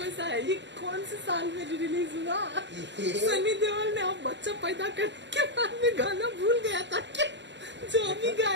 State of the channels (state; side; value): late; left; 0.52 ms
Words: सा है? ये कौन से साल में रिलीज हुआ? सनी देओल ने अब बच्चा पैदा करने के बाद में गाना भूल गया था क्या जो अभी